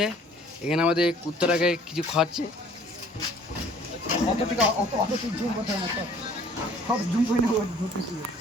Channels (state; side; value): normal; both; correlation 0.54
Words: এখানে, আমাদের কুত্তাটাকে কিছু খাওয়াচ্ছে।